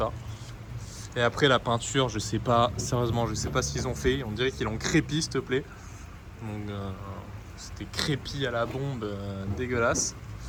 Et après, la peinture, je sais pas, sérieusement, je sais pas ce qu'ils ont fait. On dirait qu'ils l'ont crépi, s'il te plaît. Donc, c'était crépi à la bombe, dégueulasse.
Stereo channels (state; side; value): identical; both; correlation 1.00